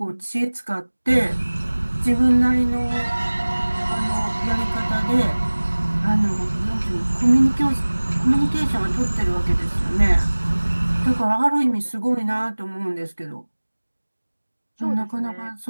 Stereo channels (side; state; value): both; inverted; correlation -1.00